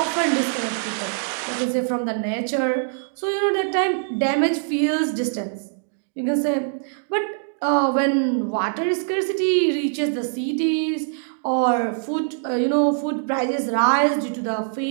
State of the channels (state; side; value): silent; left; digital silence